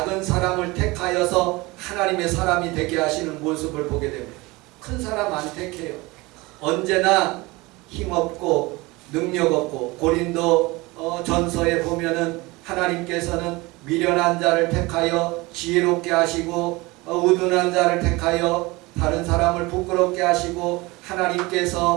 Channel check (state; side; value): quieter; left; 22.8 dB